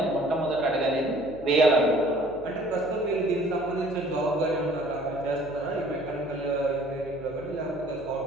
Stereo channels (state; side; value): noise; left; hum, 20 dB below the sound